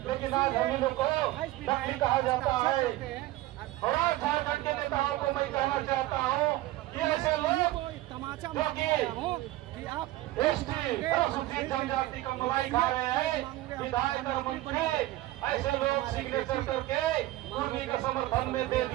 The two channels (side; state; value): left; quieter; 16.8 dB